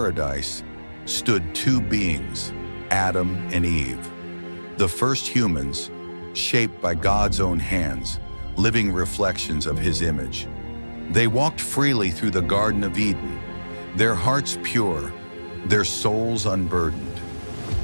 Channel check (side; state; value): both; inverted; correlation -1.00